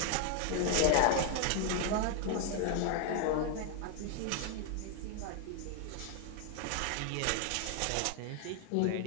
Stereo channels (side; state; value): both; different; correlation 0.00